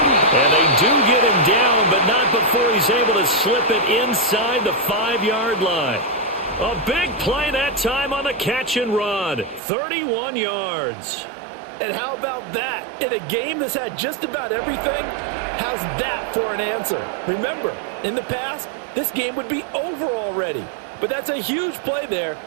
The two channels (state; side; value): drops out; left; at 9.6 s